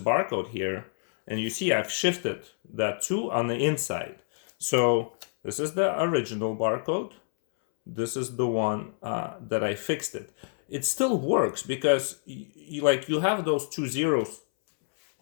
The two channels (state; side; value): silent; right; 60 dB below the other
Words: here, and you see I've shifted that 2 on the inside. So this is the original barcode, this is the one that I fixed it. It still works, because you have those 2 zeros